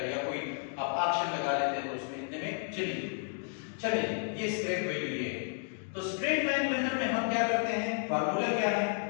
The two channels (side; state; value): right; silent; 56 dB below the other